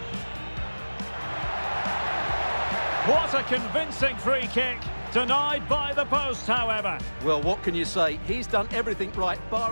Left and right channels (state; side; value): inverted; both; correlation -1.00